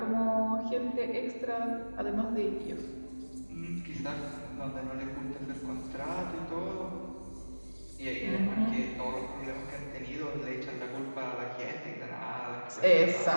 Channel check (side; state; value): both; inverted; correlation -1.00